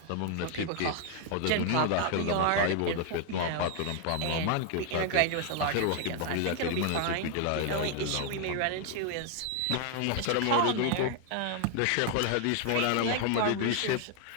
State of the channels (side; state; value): both; different; correlation 0.00